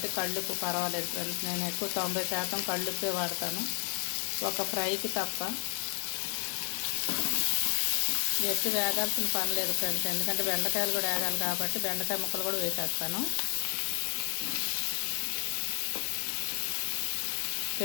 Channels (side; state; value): right; silent; digital silence